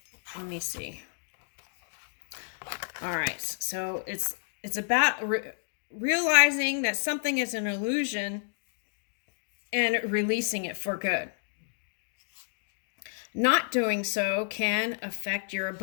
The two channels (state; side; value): silent; right; digital silence